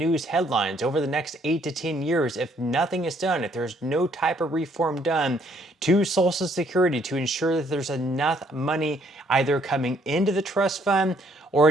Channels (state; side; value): normal; both; correlation 0.66